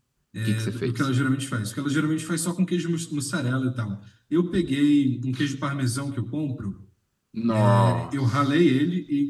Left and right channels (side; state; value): both; identical; correlation 1.00